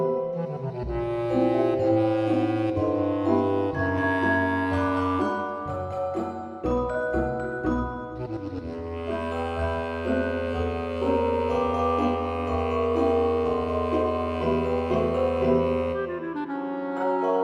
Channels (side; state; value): both; identical; correlation 1.00